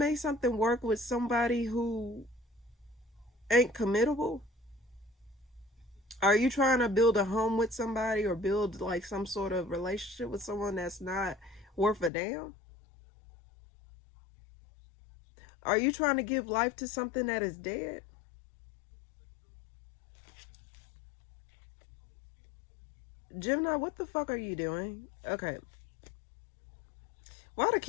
something work with somebody who ain't committable? Are you trying to build a home with somebody or build like some sort of relationship with someone that's not worth a damn? Are you trying to give life to something that is dead? Gemini, what the fuck are you doing? Okay. Why the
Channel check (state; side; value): drops out; right; at 12.1 s